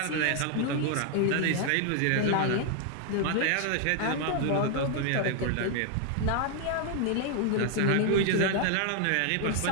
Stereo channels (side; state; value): both; different; correlation 0.00